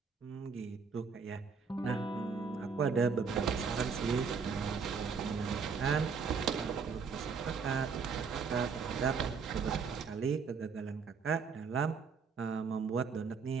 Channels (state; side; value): quieter; left; 5.5 dB